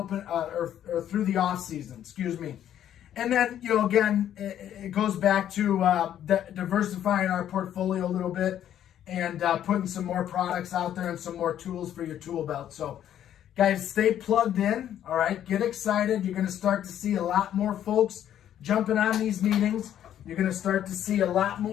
or through the off season. Excuse me. And then again, it goes back to diversifying our portfolio a little bit and putting some more products out there and some more tools for your tool belt. So, guys, stay plugged in. All right, get excited. You're going to start to see a lot more folks jumping on these meetings. You're going to start to see a lot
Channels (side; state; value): right; quieter; 10.7 dB